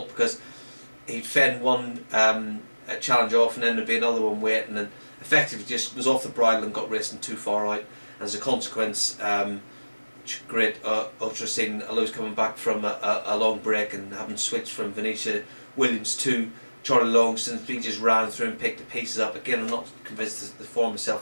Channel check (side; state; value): both; inverted; correlation -1.00